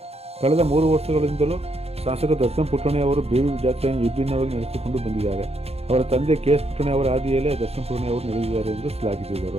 ಕಳೆದ 3 ವರ್ಷಗಳಿಂದಲೂ ಶಾಸಕ ದರ್ಶನ್ ಪುಟ್ಟಣೆ ಅವರು ಬೇಬಿ ಜಾತ್ರೆಯನ್ನು ವಿಭಿನ್ನವಾಗಿ ನಡೆಸಿಕೊಂಡು ಬಂದಿದ್ದಾರೆ. ಅವರ ತಂದೆ KS ಪುಟ್ಟಣೆ ಅವರ ಹಾದಿಯಲ್ಲೇ ದರ್ಶನ್ ಪುಟ್ಟಣೆ ಅವರು ನಡೆದಿದ್ದಾರೆ ಎಂದು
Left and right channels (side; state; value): left; late; 0.29 ms